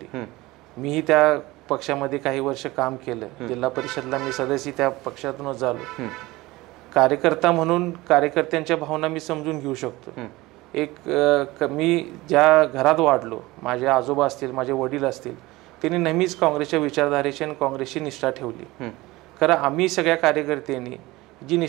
मीही त्या पक्षामध्ये काही वर्ष काम केलं. जिल्हा परिषदला मी सदस्य त्या पक्षातूनच झालो. कार्यकर्ता म्हणून कार्यकर्त्यांच्या भावना मी समजून घेऊ शकतो. मी ज्या घरात वाढलो, माझे आजोबा असतील, माझे वडील असतील, त्यांनी नेहमीच काँग्रेसच्या विचारधारेची आणि काँग्रेसची निष्ठा ठेवली. खरं आम्ही सगळ्या कार्यकर्त्यांनी जी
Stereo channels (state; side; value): quieter; left; 20.1 dB